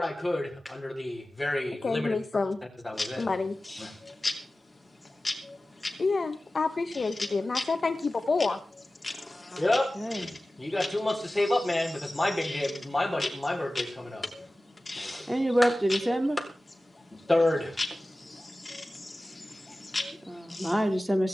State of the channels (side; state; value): both; normal; correlation 0.96